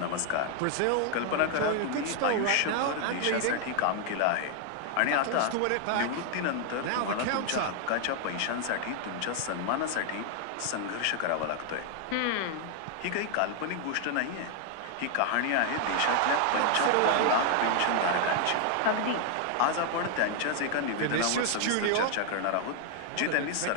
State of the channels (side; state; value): both; different; correlation 0.00